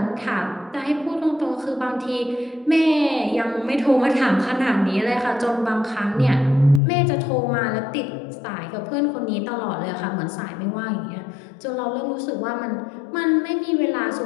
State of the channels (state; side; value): drops out; right; at 6.8 s